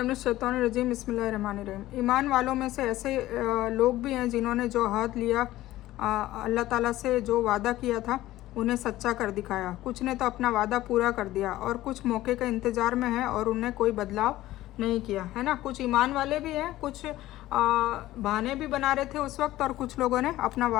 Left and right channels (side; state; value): right; quieter; 15.7 dB